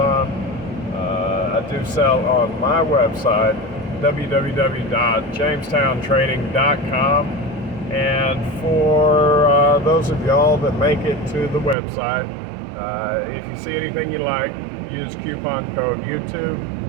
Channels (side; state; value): left; drops out; at 11.8 s